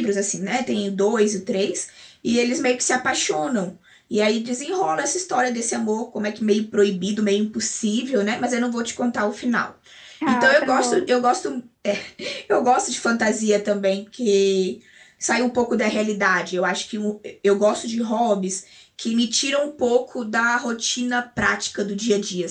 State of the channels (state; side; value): identical; both; correlation 1.00